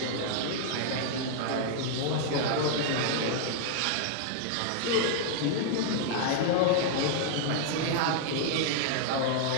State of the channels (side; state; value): both; different; correlation -0.01